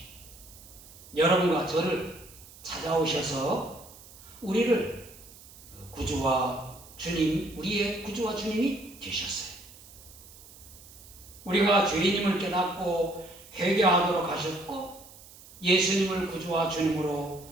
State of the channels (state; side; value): noise; right; hiss, 20 dB below the sound